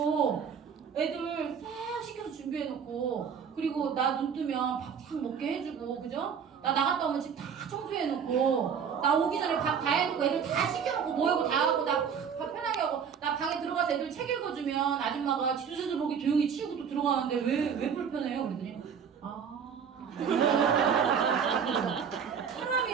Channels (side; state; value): left; quieter; 7.1 dB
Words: 애들 싹 시켜서 준비해놓고 그리고 나 눈 뜨면 밥 싹 먹게 해주고 그죠? 나 나갔다 오면 집 다 청소해놓고 나 오기 전에 밥 다 해놓고 애들 다 시켜놓고 모이고 다 하고 나 밥 편하게 하고 나 방에 들어가서 애들 책 읽어주면 아줌마가 지도지도 모르게 조용히 치우고 또 들어가는데 왜 불편해요? 그랬더니